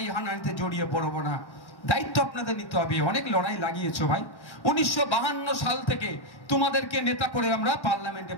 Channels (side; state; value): right; late; 1.1 ms